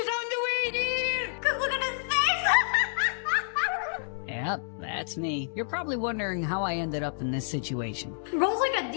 on the way, dude. Cause look at his face. Yep, that's me. You're probably wondering how I ended up in this situation. Bro's like a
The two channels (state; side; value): silent; right; digital silence